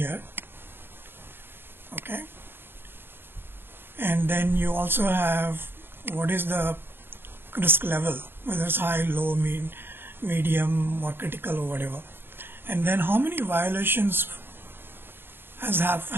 Okay, and then you also have what is the risk level, whether it's high, low, medium, or critical, or whatever. And then how many violations have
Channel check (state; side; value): late; left; 0.10 ms